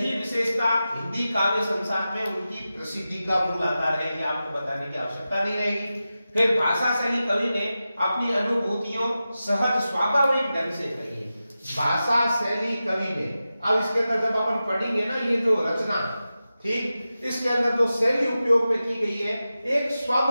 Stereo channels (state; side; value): inverted; both; correlation -0.93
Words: विशेषता हिंदी काव्य संसार में उनकी प्रसिद्धि का मूल आधार है, ये आपको बताने की आवश्यकता नहीं रहेगी। फिर भाषा शैली कवि ने अपनी अनुभूतियों सहज स्वाभाविक ढंग से कही। भाषा शैली कवि ने, अब इसके अंदर जब अपन पढ़ेंगे ना ये जो रचना, ठीक, इसके अंदर जो शैली उपयोग में की गई है, एक